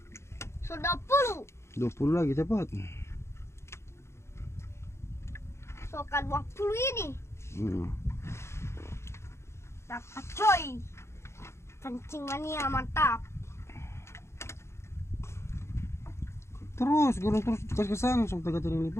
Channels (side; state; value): right; late; 0.13 ms